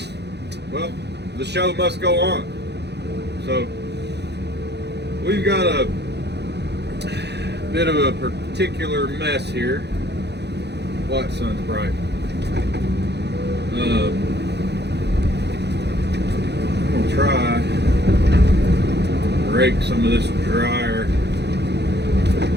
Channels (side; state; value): left; late; 0.49 ms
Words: well, the show must go on. So we've got a bit of a particular mess here. What, sun's bright. I'm gonna try to rake some of this drier